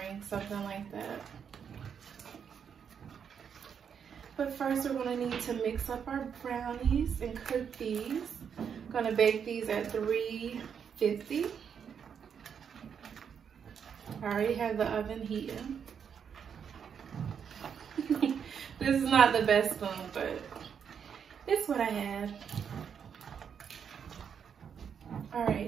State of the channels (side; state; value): left; quieter; 7.4 dB